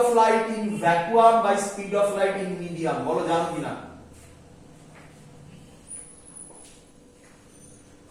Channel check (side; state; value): both; identical; correlation 1.00